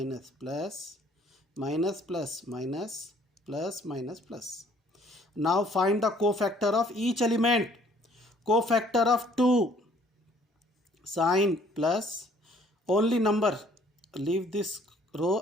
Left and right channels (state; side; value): normal; both; correlation 0.59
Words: plus, minus, plus, minus, plus, minus, plus. Now find the cofactor of each element. Cofactor of 2. Sign plus, only number. Leave this